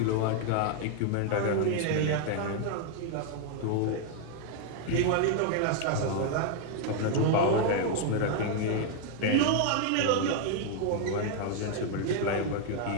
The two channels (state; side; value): different; both; correlation 0.00